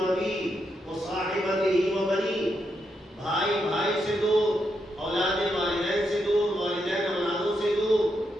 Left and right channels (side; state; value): both; normal; correlation 0.82